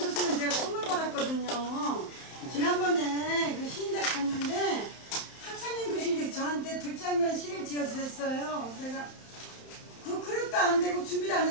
제가 선물 받았거든요. 지난번에 그 시인대 갔는데 학창님 교수님께서 저한테 들장면 시를 지어주셨어요. 제가 그 그릇도 안 되고 준비도 안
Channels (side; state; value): right; late; 31 ms